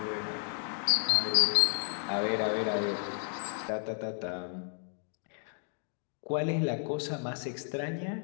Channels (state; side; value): silent; right; 56 dB below the other